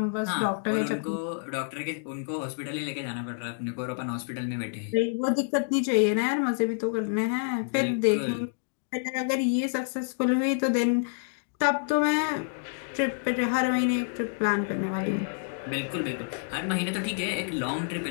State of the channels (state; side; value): silent; right; digital silence